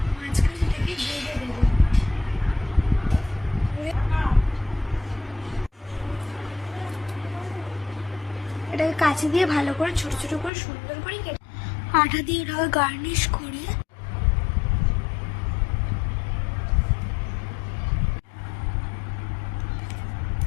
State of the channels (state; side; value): drops out; right; at 10.5 s